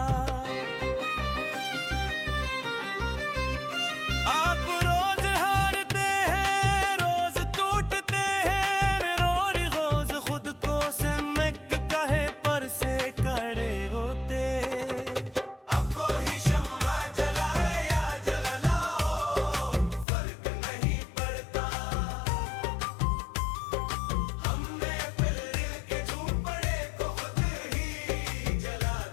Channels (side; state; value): right; drops out; at 20.1 s